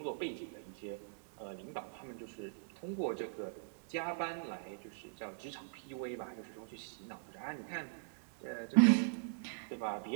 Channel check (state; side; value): silent; left; digital silence